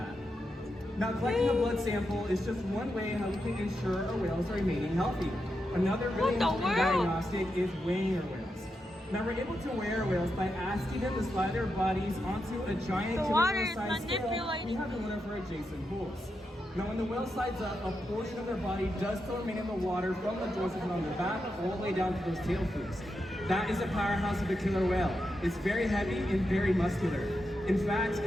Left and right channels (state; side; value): normal; both; correlation 0.86